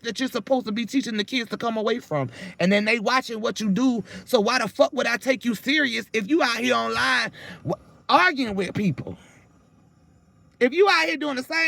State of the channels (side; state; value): both; identical; correlation 1.00